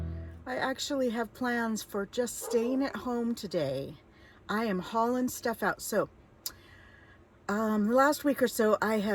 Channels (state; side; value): identical; both; correlation 1.00